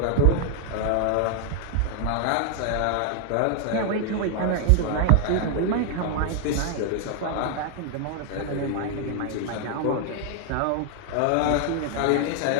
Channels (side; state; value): both; different; correlation 0.00